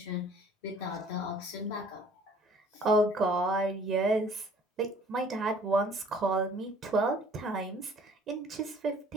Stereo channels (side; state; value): both; normal; correlation 0.53